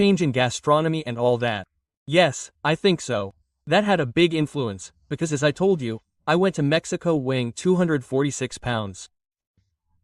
in gastronomy and all that. Yes, I think so. That had a big influence, because as I told you, I went to Mexico weighing 246 pounds.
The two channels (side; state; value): both; identical; correlation 1.00